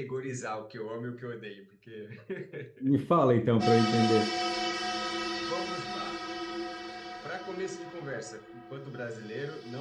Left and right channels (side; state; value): both; identical; correlation 1.00